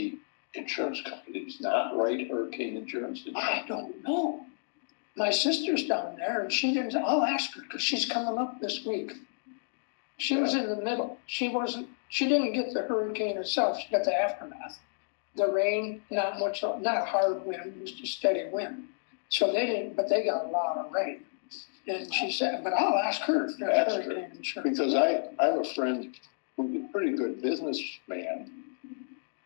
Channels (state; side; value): silent; right; digital silence